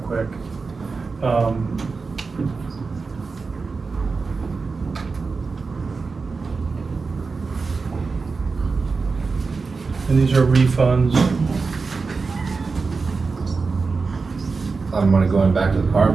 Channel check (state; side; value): quieter; left; 4.4 dB